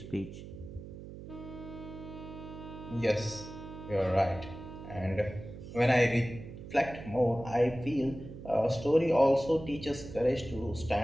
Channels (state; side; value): noise; right; hum, 13 dB below the sound